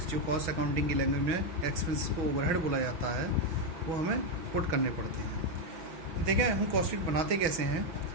जो कॉस्ट अकाउंटिंग की लैंग्वेज में एक्सपेंसेस को ओवरहेड बोला जाता है, वो हमें पुट करने पड़ते हैं। देखें हम कॉस्ट शीट बनाते कैसे हैं।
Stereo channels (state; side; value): late; left; 6.1 ms